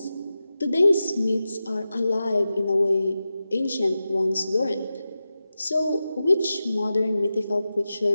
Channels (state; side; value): inverted; both; correlation -0.92